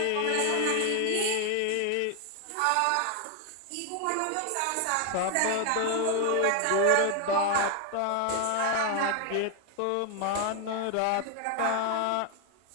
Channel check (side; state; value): both; different; correlation 0.01